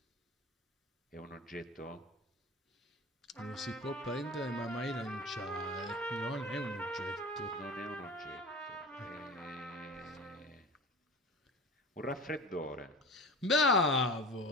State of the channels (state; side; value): normal; both; correlation 0.34